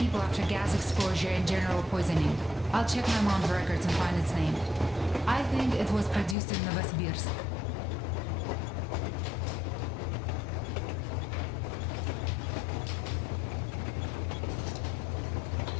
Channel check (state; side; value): drops out; right; at 6.4 s